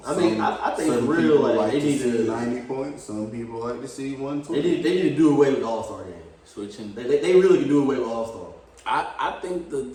I mean, I think some for real, people like, like they to need see to- 90 points. Some people like to see 120. They need to do away with the All-Star game. Switching. They really can do away with All-Star. I think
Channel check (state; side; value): identical; both; correlation 1.00